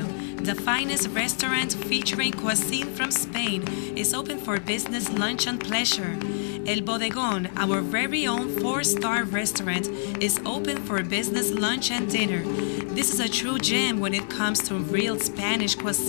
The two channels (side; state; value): right; silent; digital silence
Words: The finest restaurant featuring cuisine from Spain is open for business, lunch, and pleasure. El Bodegón, our very own 4-star restaurant, is open for business, lunch, and dinner. This is a true gem when it comes to real Spanish